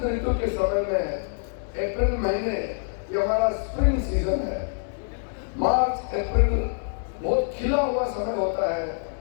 ऋतु के समय में अप्रैल महीने, ये हमारा स्प्रिंग सीजन है, मार्च अप्रैल बहुत खिला हुआ समय होता है।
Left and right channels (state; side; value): silent; right; digital silence